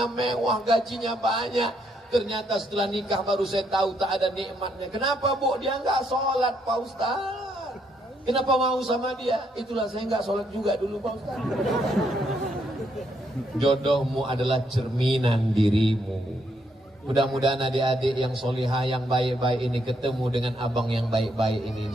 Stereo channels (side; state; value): both; normal; correlation 0.74